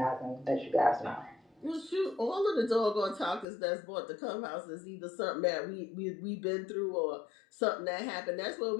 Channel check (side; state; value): right; drops out; at 3.5 s